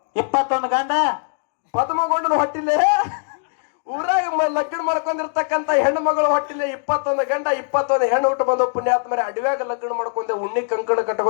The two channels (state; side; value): silent; right; 65 dB below the other